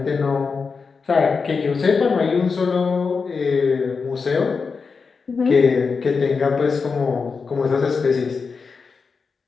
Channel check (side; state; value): right; quieter; 5.0 dB